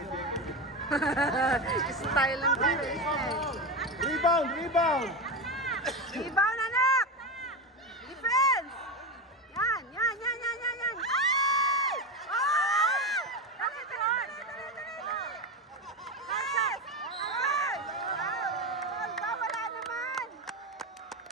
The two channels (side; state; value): both; normal; correlation 0.17